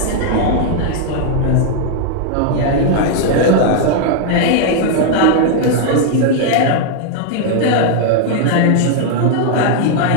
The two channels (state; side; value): different; both; correlation 0.00